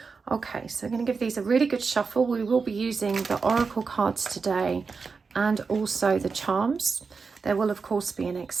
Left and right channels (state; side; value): quieter; left; 4.9 dB